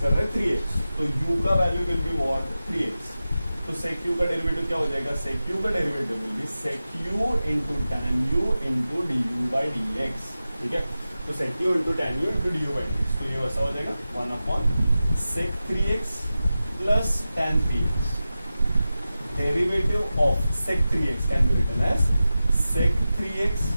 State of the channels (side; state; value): both; inverted; correlation -0.94